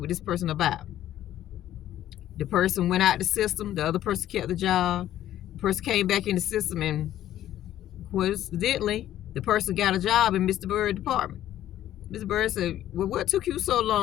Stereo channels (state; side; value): quieter; right; 12.5 dB